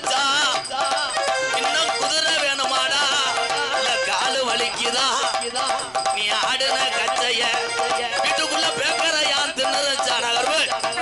இன்னும் குதிரை வேணுமாடா இல்ல காலு வலிக்குதா நீ ஆடுன கச்சைய வீட்டுக்குள்ள பேக்கற யான் தின்னுச்சா நகர்வு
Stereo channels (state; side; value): noise; right; rumble, 26 dB below the sound